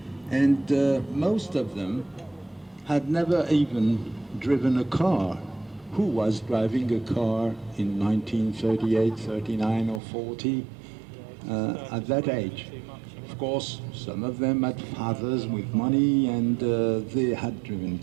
and most of them had never even driven a car. Who was driving a car in 1938, 39 or 40 at that age? Of course, some of them had fathers with money and they had driven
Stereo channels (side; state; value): left; drops out; at 10.0 s